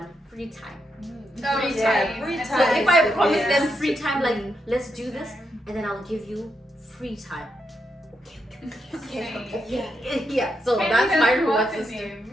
free time. Free time. So if I promise them free time, like let's do this, and then I'll give you free time. Okay. Yeah. So that's my reward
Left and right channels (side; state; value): both; normal; correlation 0.82